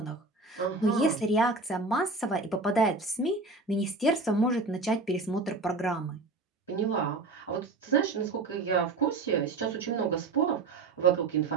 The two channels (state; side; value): quieter; left; 3.6 dB